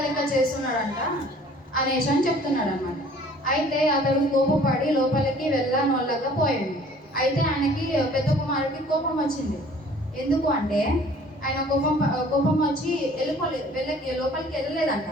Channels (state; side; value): normal; both; correlation 0.52